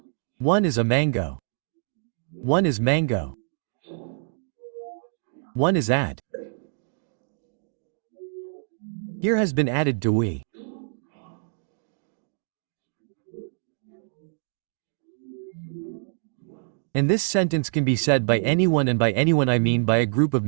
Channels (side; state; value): left; silent; digital silence